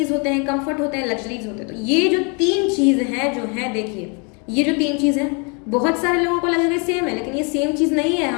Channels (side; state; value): right; quieter; 34.4 dB